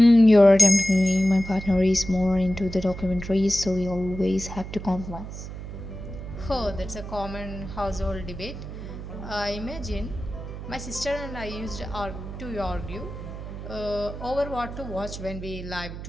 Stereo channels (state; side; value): noise; right; hum, 10 dB below the sound